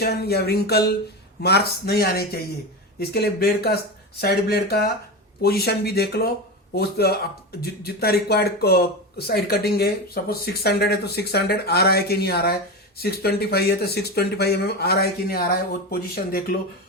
या रिंकल मार्क्स नहीं आने चाहिए। इसके लिए ब्लेड का साइड ब्लेड का पोजीशन भी देख लो। जितना रिक्वायर्ड साइड कटिंग है, सपोज 600 है तो 600 आ रहा है कि नहीं आ रहा है, 625 है तो 625 mm आ रहा है कि नहीं आ रहा है, वो पोजीशन देख लो।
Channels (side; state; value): both; normal; correlation 0.20